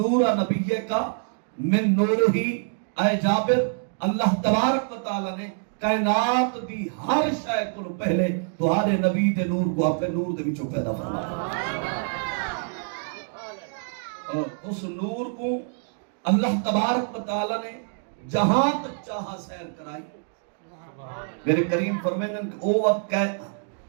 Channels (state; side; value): silent; left; 57 dB below the other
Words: نبی کا من نور ہی اے جابر اللہ تبارک و تعالیٰ نے کائنات دی ہر شے کو پہلے تمہارے نبی دے نور کو اپنے نور دے وچوں پیدا فرمایا اور اس نور کو اللہ تبارک و تعالیٰ نے جہاں تک چاہا سیر کرائی میرے کریم فرمائیں کہ